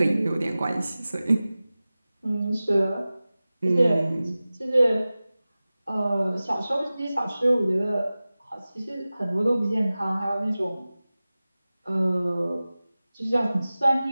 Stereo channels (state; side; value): inverted; both; correlation -0.97